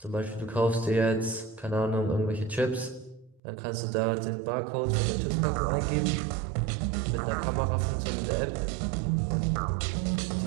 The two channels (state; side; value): drops out; left; at 3.4 s